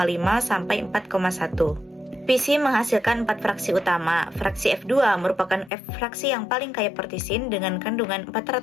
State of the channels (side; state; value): right; drops out; at 5.7 s